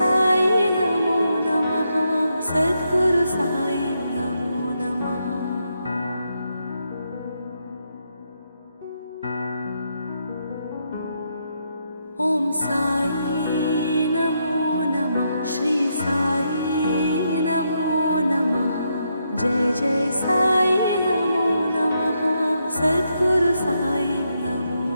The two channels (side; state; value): both; inverted; correlation -0.80